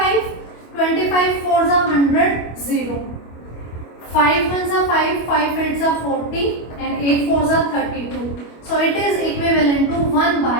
25 fours are 100. 0. 5 ones are 5. 5 eights are 40 and 8 fours are 32. So it is equivalent to 1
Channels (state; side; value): late; right; 25 ms